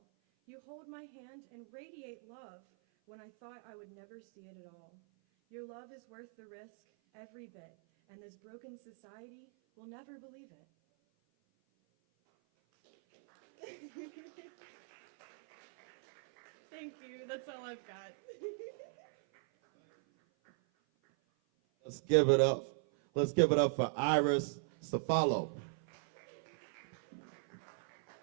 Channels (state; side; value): silent; left; 51 dB below the other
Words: You hold my hand and radiate love when I thought I would never see it at all. Your love is worth the risk, every bit, and this broken society will never believe it. Thank you, that's all I've got. Let's give it up. Let's give it up for Iris Ciafalo.